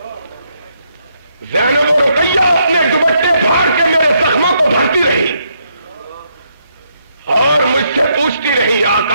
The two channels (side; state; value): both; inverted; correlation -0.76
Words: زینب و رقیہ اپنے دوپٹے پھاڑ کے میرے زخموں کو بھرتی رہی، اور مجھ سے پوچھتی رہی